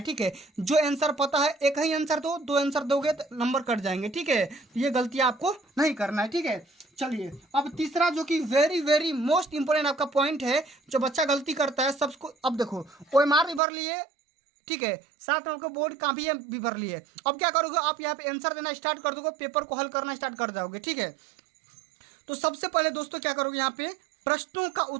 ठीक है। जो आंसर पता है एक ही आंसर दो, दो आंसर दोगे तो नंबर कट जाएंगे, ठीक है। ये गलती आपको नहीं करना है, ठीक है। चलिए अब तीसरा जो कि वेरी वेरी मोस्ट इंपोर्टेंट आपका पॉइंट है, जो बच्चा गलती करता है सबको। अब देखो OMR भी भर लिए, ठीक है, साथ में आपको बोर्ड कॉपी भी भर लिए। अब क्या करोगे, आप यहाँ पे आंसर देना स्टार्ट कर दोगे, पेपर को हल करना स्टार्ट कर जाओगे, ठीक है। तो सबसे पहले दोस्तों क्या करोगे, यहाँ पे प्रश्नों का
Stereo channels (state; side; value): drops out; left; at 13.6 s